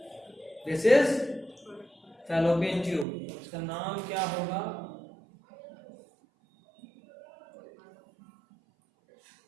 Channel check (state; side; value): drops out; left; at 3.1 s